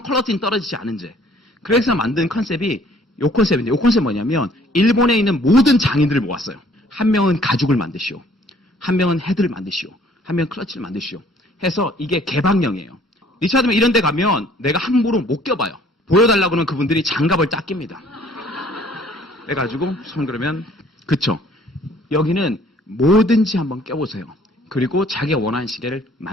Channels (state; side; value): normal; both; correlation 0.57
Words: 퀄리티는 떨어지지 않은 채. 그래서 만든 컨셉이 요 컨셉인데, 요 컨셉 뭐냐면 일본에 있는 모든 장인들을 모았어요. 한 명은 가죽을 만드시오, 한 명은 헤드를 만드시오, 한 명은 클러치를 만드시오 해서 이게 개방형이에요. 리차드맨 이런 데 가면 내가 함부로 못 껴봐요. 보여달라고 하면 그분들이 장갑을 딱 낍니다. 해가지고 손 그러면 그쵸. 여기는 뭐든지 한번 껴보세요. 그리고 자기가 원하는 시계를